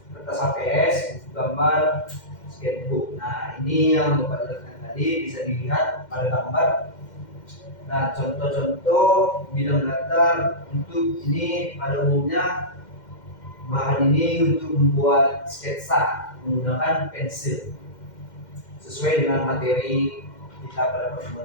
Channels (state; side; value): late; right; 2.1 ms